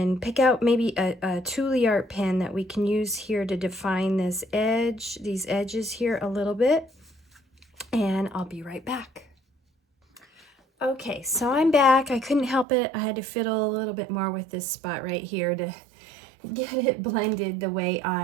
pick out maybe a Tule Art pen that we can use here to define this edge, these edges here a little bit, and I'll be right back. Okay, so I'm back. I couldn't help it. I had to fiddle a little bit more with this spot right here to get it blended the way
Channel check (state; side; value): drops out; left; at 12.7 s